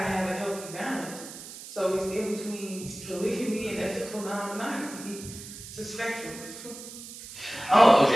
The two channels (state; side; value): noise; right; hiss, 13 dB below the sound